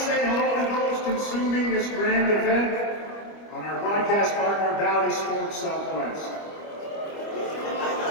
hello to those consuming this grand event on our broadcast partner, Valley Sports Southwest.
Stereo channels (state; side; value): late; right; 25 ms